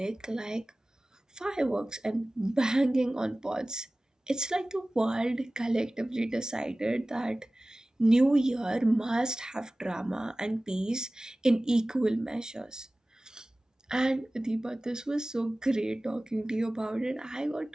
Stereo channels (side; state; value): both; normal; correlation 0.97